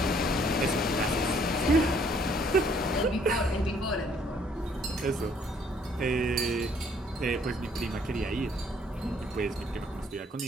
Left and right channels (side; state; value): both; normal; correlation 0.63